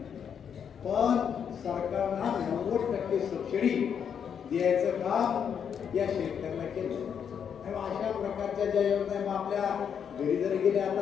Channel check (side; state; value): right; quieter; 7.7 dB